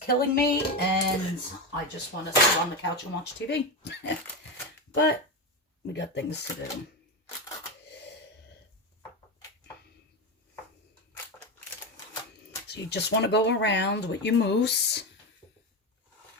me and I just want to sit on the couch and watch TV. But we got things to do. So you just want to go around with your mousse.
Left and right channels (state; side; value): normal; both; correlation 0.15